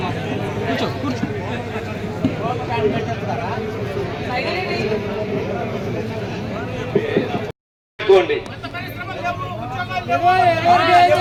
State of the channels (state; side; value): identical; both; correlation 1.00